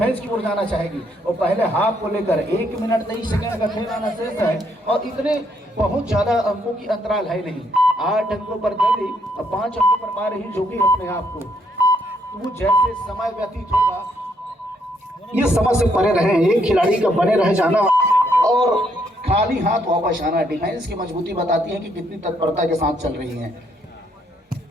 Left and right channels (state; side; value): normal; both; correlation 0.72